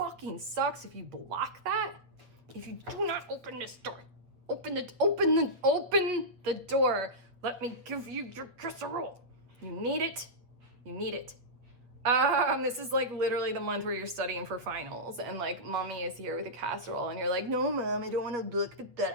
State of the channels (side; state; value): left; late; 8.4 ms